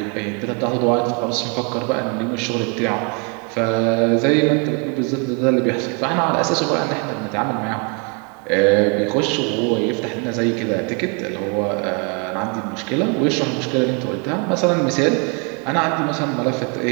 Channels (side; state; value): left; quieter; 34.8 dB